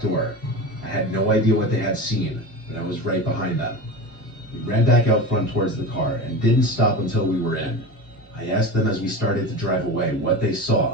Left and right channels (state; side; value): normal; both; correlation 0.28